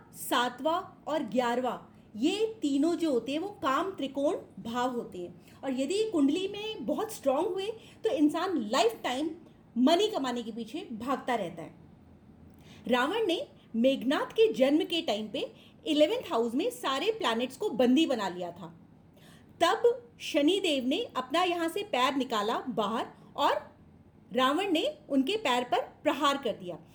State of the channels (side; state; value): both; identical; correlation 1.00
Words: 7वां और 11वां ये तीनों जो होते हैं वो काम त्रिकोण भाव होते हैं, और यदि ये कुंडली में बहुत स्ट्रांग हुए तो इंसान लाइफ टाइम मनी कमाने के पीछे भागता रहता है। रावण ने मेघनाथ के जन्म के टाइम पे 11th हाउस में सारे प्लैनेट्स को बंदी बना लिया था। तब शनिदेव ने अपना यहाँ से पैर निकाला बाहर और रावण ने उनके पैर पर प्रहार कर दिया,